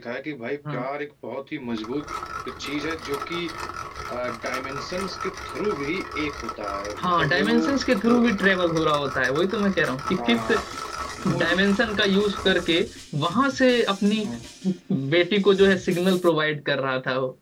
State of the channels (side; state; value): both; identical; correlation 1.00